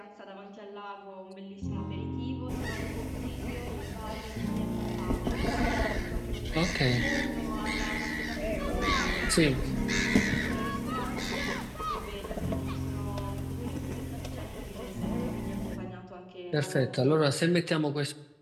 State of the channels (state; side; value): identical; both; correlation 1.00